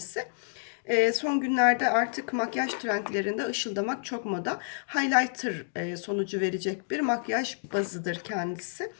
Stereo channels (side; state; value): right; silent; digital silence